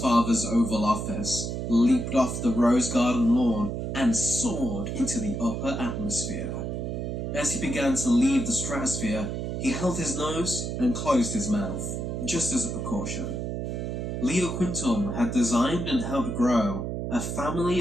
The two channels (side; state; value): right; noise; hum, 3 dB below the sound